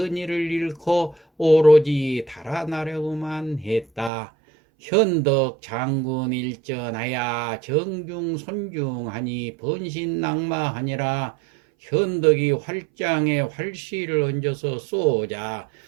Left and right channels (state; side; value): drops out; left; at 4.1 s